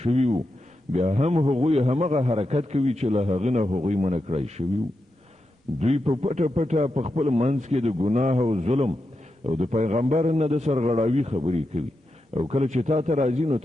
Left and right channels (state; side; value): normal; both; correlation 0.88